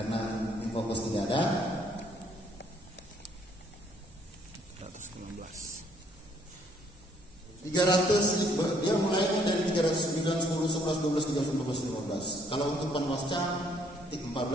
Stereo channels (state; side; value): normal; both; correlation 0.66